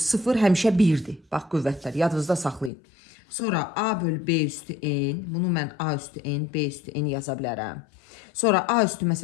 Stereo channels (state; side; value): drops out; right; at 2.7 s